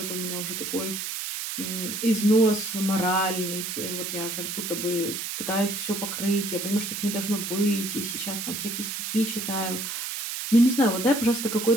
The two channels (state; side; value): noise; right; hiss, 4 dB below the sound